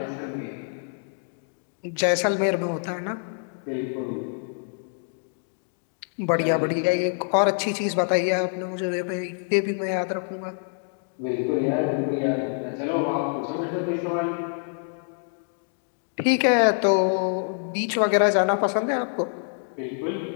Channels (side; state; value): right; silent; 60 dB below the other